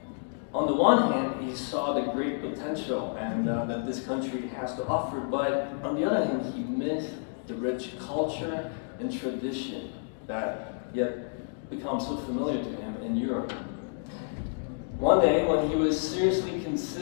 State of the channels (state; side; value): silent; right; digital silence